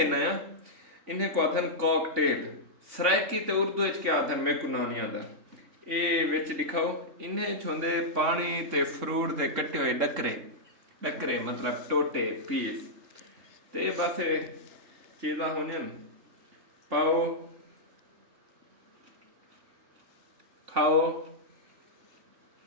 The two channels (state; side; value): late; left; 3.5 ms